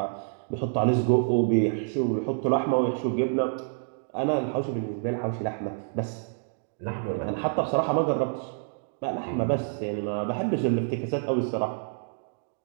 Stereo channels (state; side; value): silent; left; digital silence